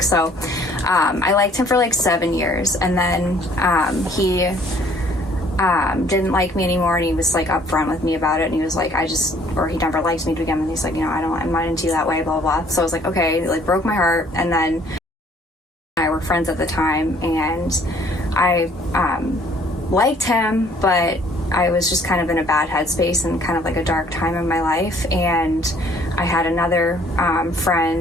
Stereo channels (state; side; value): normal; both; correlation 0.59